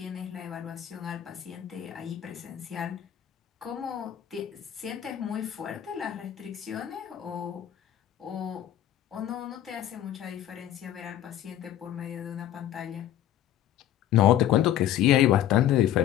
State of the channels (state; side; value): quieter; right; 11.8 dB